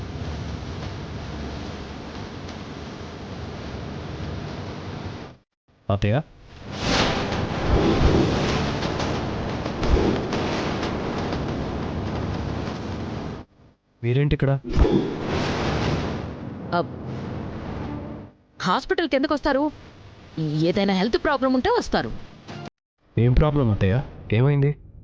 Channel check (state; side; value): identical; both; correlation 1.00